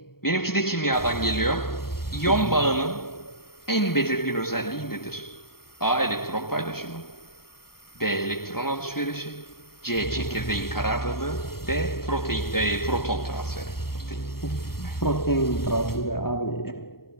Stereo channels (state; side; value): late; right; 0.94 ms